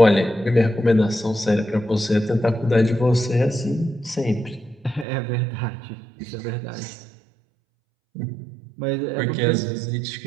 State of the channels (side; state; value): left; drops out; at 5.1 s